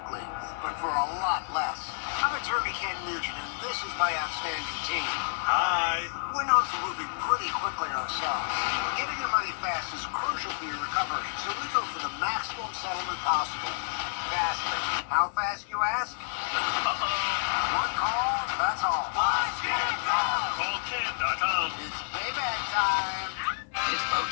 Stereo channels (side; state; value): right; silent; digital silence